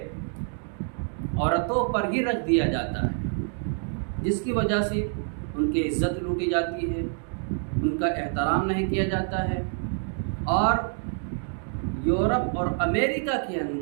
عورتوں پر ہی رکھ دیا جاتا ہے، جس کی وجہ سے ان کی عزت لوٹی جاتی ہے، ان کا احترام نہیں کیا جاتا ہے، اور یورپ اور امریکہ کے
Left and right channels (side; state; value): left; silent; 55 dB below the other